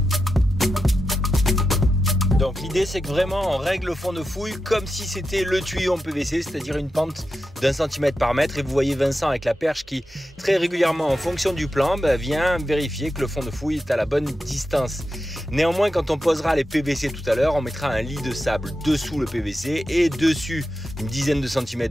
Donc l'idée c'est que vraiment on règle le fond de fouille comme si c'était le tuyau en PVC, c'est-à-dire une pente d'1 cm par mètre. Et vous voyez Vincent avec la perche qui très régulièrement en fonction du plan vient vérifier que le fond de fouille est à la bonne distance. Néanmoins, quand on posera les PVC tout à l'heure, on mettra un lit de sable dessous le PVC et dessus une dizaine de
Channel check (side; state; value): both; normal; correlation 0.90